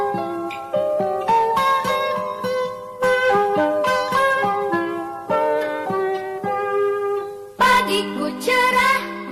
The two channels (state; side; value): identical; both; correlation 1.00